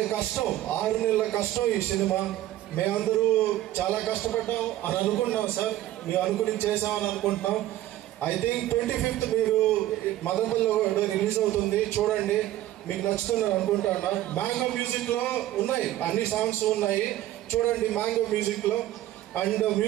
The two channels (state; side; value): quieter; left; 14.2 dB